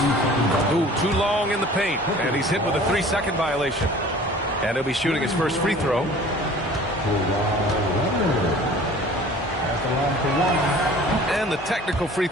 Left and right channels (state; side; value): normal; both; correlation 0.46